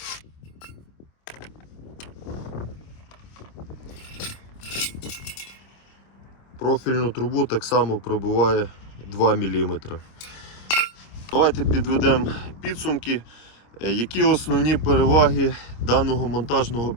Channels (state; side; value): late; right; 26 ms